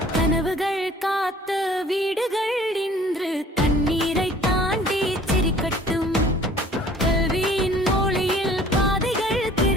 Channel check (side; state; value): both; normal; correlation 0.52